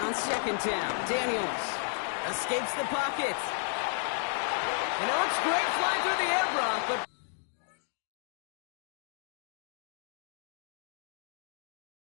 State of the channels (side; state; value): right; silent; 56 dB below the other